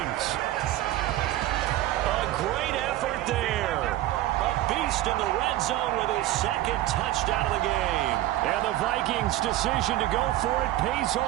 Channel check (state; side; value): quieter; left; 14.9 dB